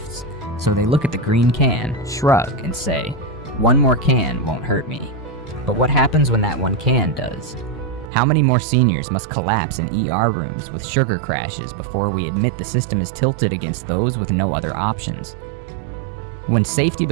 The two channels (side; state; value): left; drops out; at 8.1 s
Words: so they look at the green can, shrug, and say, "One more can won't hurt me." But what happens when that one can does? How many more seniors must collapse in ER rooms with sugar crashes before we admit the system is tilted against those with no other options? When safety